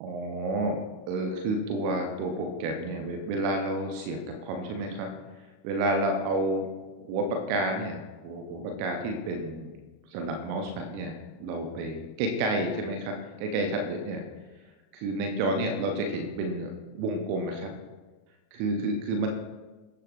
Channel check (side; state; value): left; late; 37 ms